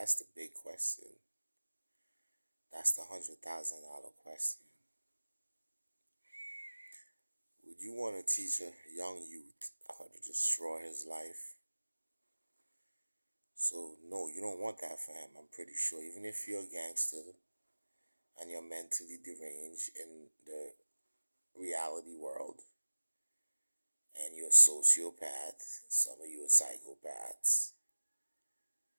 the big question. That's the $100,000 question. Would you want to teach a young youth how to destroy his life? So no, you don't want that for him. I'm pretty sure. Even if you're a gangster and you're mentally deranged in the reality world, and you're a sociopath, some of you are psychopaths,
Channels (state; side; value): inverted; both; correlation -1.00